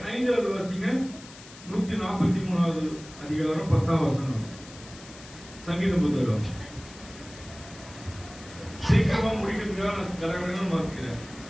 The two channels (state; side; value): noise; left; hiss, 18 dB below the sound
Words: வாசிங்க. 143வது அதிகாரம் 10வது வசனம். சங்கீத புத்தகம். சீக்கிரமா முடிக்கிறதுக்காக நான் கடகடன்னு வாசிக்கிறேன்.